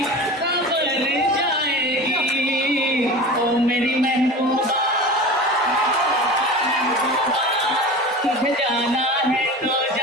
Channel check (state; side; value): normal; both; correlation 0.33